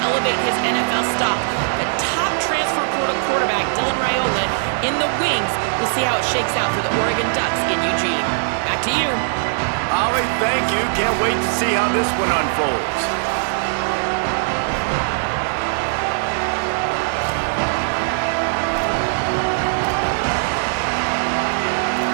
his NFL stock. The top transfer portal quarterback, Dylan Raiola, in the wings. We'll see how it shakes out for the Oregon Ducks in Eugene. Back to you. Holly, thank you. Can't wait to see how this one unfolds.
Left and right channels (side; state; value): left; silent; 66 dB below the other